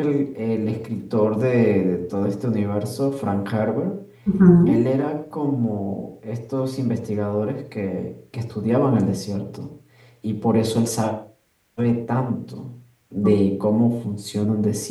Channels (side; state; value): both; identical; correlation 1.00